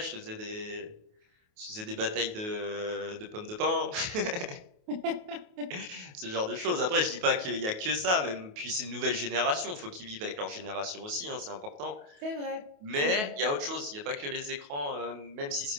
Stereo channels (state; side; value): late; left; 28 ms